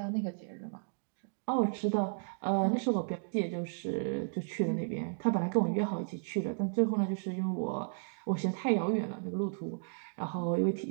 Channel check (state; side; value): silent; left; digital silence